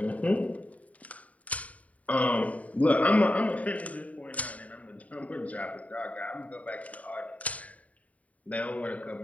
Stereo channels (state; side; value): late; right; 0.069 ms